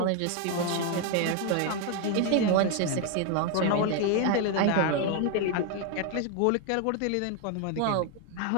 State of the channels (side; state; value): both; different; correlation 0.01